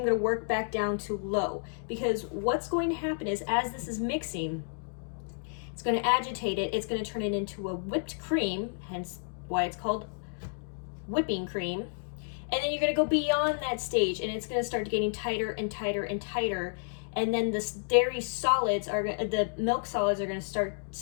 going to work back down to low. Because what's going to happen is as this is mixing, it's going to agitate it. It's going to turn it into a whipped cream, hence why it's called whipping cream. And then you're going to go beyond that stage, and it's going to start getting tighter and tighter and tighter. And then the dairy solids the milk solids are going to start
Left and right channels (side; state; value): right; silent; digital silence